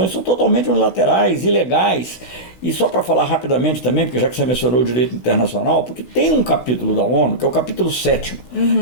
são totalmente unilaterais, ilegais. E só para falar rapidamente também, porque já que você mencionou o direito internacional, porque tem um capítulo da ONU, que é o capítulo 7º,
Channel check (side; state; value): right; late; 6.3 ms